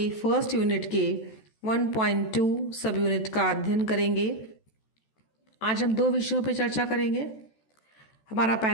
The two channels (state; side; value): late; right; 14 ms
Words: फर्स्ट यूनिट के 1.2 सब यूनिट का अध्ययन करेंगे। आज हम दो विषयों पर चर्चा करेंगे। हमारा